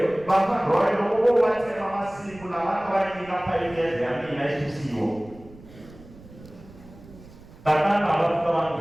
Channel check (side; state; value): right; noise; rumble, 20 dB below the sound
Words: Bahkan roy logo baca masih pulawan orang ini apa ini yang ini sisiwo. Tatan kalau orang